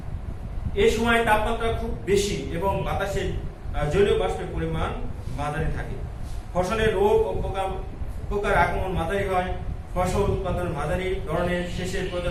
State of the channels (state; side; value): identical; both; correlation 1.00